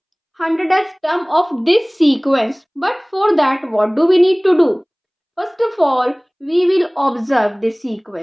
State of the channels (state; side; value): identical; both; correlation 1.00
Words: 100th term of this sequence. But for that, what do we need to do? First of all, we will observe this